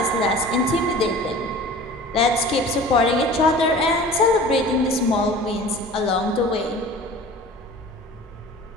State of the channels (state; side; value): normal; both; correlation 0.42